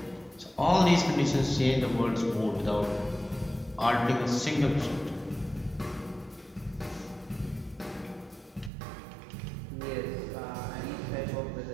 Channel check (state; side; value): drops out; left; at 8.7 s